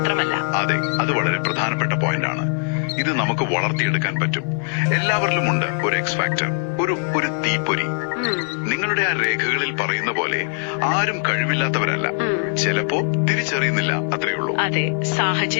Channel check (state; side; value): silent; right; 59 dB below the other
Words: അതെ, അത് വളരെ പ്രധാനപ്പെട്ട പോയിന്റ് ആണ്. ഇത് നമുക്ക് വളർത്തിയെടുക്കാൻ പറ്റും. എല്ലാവരിലും ഉണ്ട് ഒരു എക്സ് ഫാക്ടർ, ഒരു തീപ്പൊരി. നിങ്ങളുടെ ആ രേഖകളിൽ പറയുന്ന പോലെ ആരും കഴിവില്ലാത്തവരല്ല. ചിലപ്പോ തിരിച്ചറിയുന്നില്ല, അത്രയുള്ളൂ. അതെ,